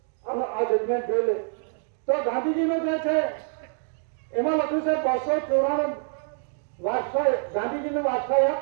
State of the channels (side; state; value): left; silent; digital silence